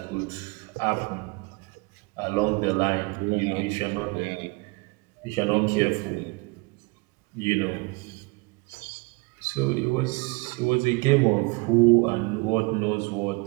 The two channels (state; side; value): quieter; left; 27.5 dB